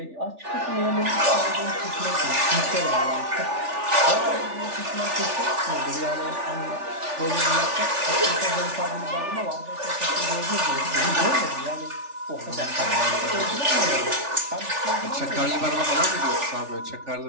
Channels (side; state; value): left; late; 3.4 ms